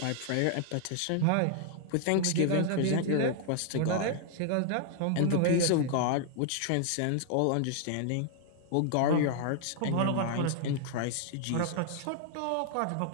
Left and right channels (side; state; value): both; different; correlation 0.00